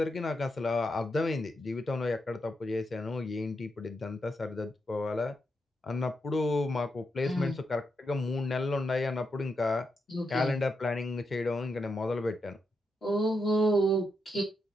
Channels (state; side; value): normal; both; correlation 0.83